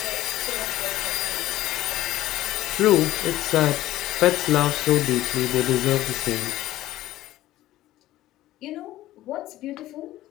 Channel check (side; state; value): right; quieter; 15.2 dB